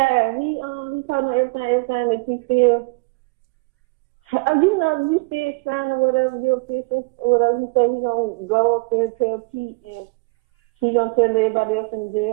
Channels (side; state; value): left; quieter; 28.2 dB